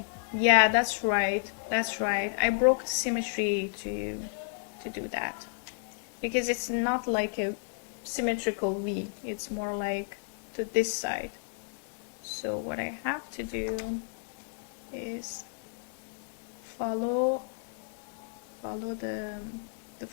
Yeah, that's right. That's right. I broke the symmetry to do that because it's not like a symmetrical V. It's more like to this side. So what I have to do is follow the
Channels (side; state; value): right; silent; digital silence